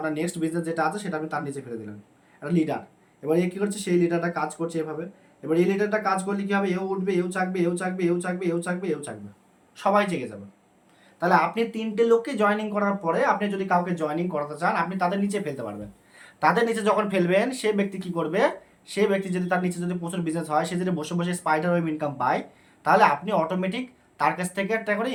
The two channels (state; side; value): identical; both; correlation 1.00